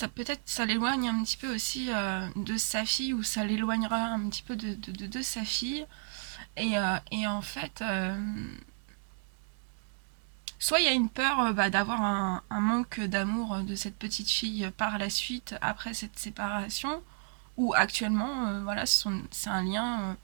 peut-être ça l'éloigne un petit peu aussi de sa fille, ou ça l'éloignera un petit peu de sa fille, et en fait soit il y a une peur d'avoir un manque d'amour de cette petite fille par la suite après cette séparation, ou actuellement voilà c'est un lien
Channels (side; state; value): left; silent; 56 dB below the other